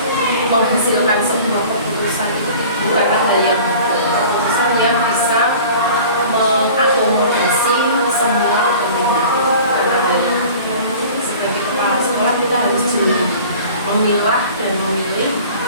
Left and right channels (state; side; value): inverted; both; correlation -0.43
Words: menghasilkan sebuah keputusan itu bukanlah hal yang mudah. Keputusan yang bisa mengakomodasi semua kepentingan. Karena dari sebagai kepala sekolah kita harus jeli memilah dan memilih